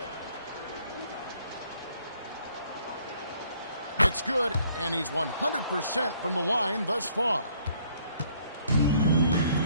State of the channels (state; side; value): inverted; both; correlation -0.64